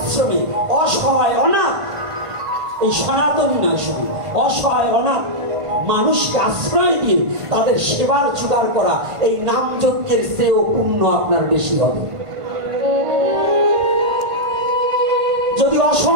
অসহায় অনাথ, এই সনাতনী নয় শুধু, অসহায় অনাথ মানুষকে আশ্রয় দিয়ে তাদের সেবার জোগাড় করা, এই নাম যজ্ঞের চেয়েও পুণ্য আপনার বেশি হবে। যদি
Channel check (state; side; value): late; left; 1.5 ms